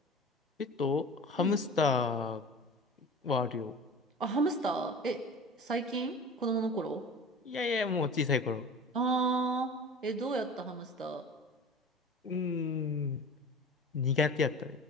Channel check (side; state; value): both; normal; correlation 0.38